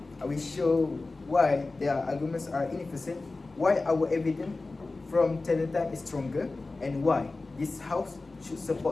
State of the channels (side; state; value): right; quieter; 3.4 dB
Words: I will show why their arguments are inefficient, why our evidence from talent time is stronger, and why this House should